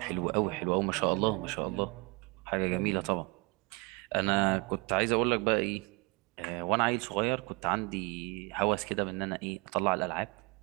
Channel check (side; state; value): left; quieter; 26.7 dB